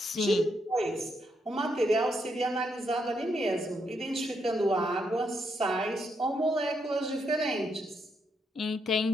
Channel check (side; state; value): both; normal; correlation 0.78